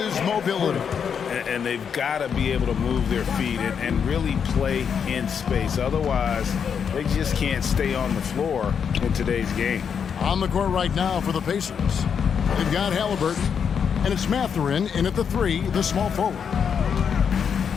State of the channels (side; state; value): right; quieter; 7.1 dB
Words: mobility. And they've got to be able to move their feet and really play in space. Otherwise, they just can't stay on the floor in today's game. On the court right now for the Pacers, they've got Halliburton, and it's Mathurin in at the 3, the small forward.